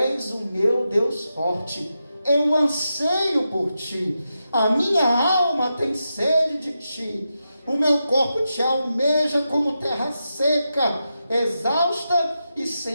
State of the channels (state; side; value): inverted; both; correlation -0.88